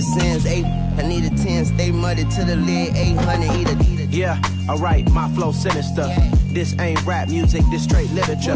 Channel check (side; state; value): both; identical; correlation 1.00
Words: sins, I need a 10, stay muddy to the lid, 800, eat it. Yeah, alright, my flow sinister. Yeah. This ain't rap music, this straight